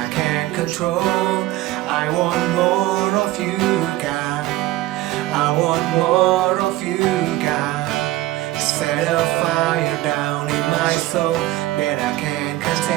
can't control. I want more of you, God. I want more of you, God. Set a fire down in my soul that I can't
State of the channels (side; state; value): left; quieter; 16.5 dB